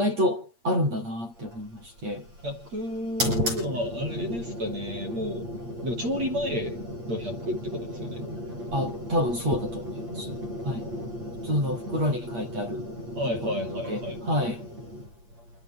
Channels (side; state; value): left; late; 8.5 ms